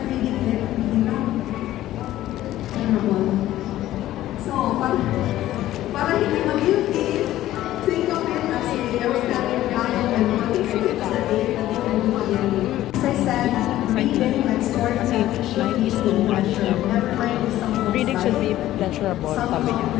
reading it, you know, terrible. So, para hindi mag-guilty, think of it as a outstanding value and motivation sa day na di ka lumagyan. As I said, reading and storytelling should be pleasure. Never mind if someone Reading should be pleasurable, sabi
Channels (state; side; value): quieter; right; 14.2 dB